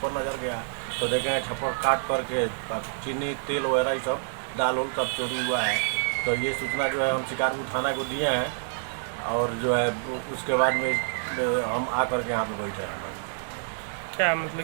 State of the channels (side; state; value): left; silent; digital silence